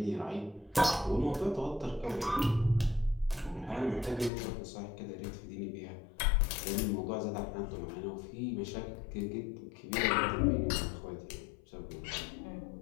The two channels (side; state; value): right; drops out; at 4.3 s